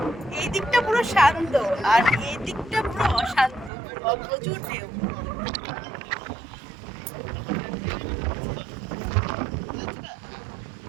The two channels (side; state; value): left; drops out; at 3.7 s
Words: এই দিকটা পুরো শান্ত আর এই দিকটা পুরো অশান্ত, প্রচুর ঢেউ।